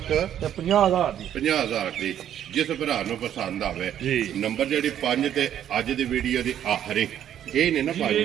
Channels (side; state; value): left; quieter; 10.4 dB